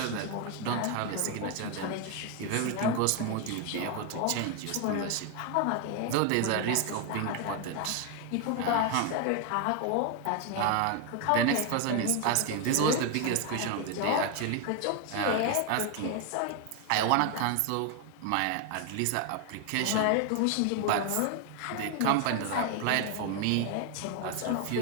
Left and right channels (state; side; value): different; both; correlation 0.01